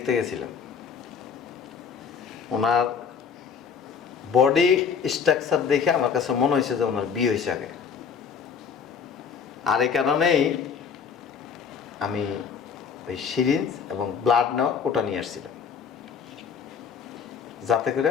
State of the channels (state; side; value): quieter; right; 6.6 dB